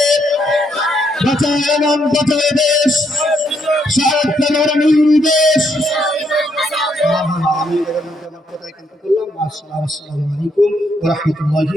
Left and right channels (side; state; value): both; normal; correlation 0.74